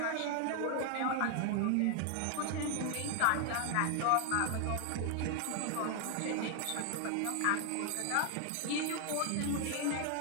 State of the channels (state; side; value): different; both; correlation 0.00